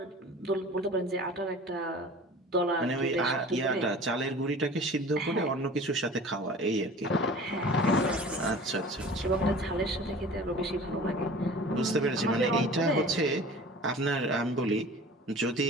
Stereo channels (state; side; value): normal; both; correlation 0.42